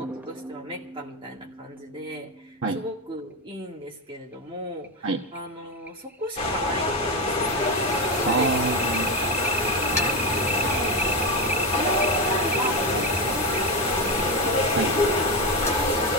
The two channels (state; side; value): normal; both; correlation 0.13